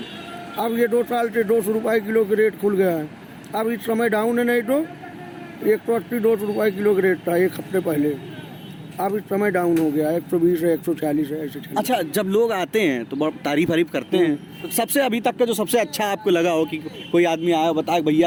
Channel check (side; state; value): both; identical; correlation 1.00